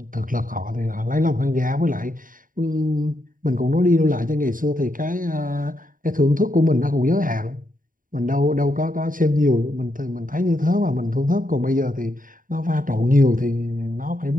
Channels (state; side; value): late; left; 0.40 ms